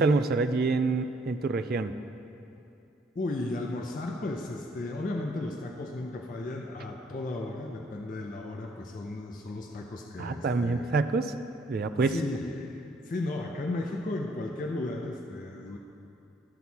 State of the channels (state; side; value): normal; both; correlation 0.66